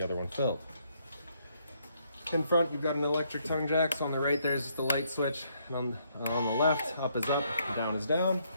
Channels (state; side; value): inverted; both; correlation -0.72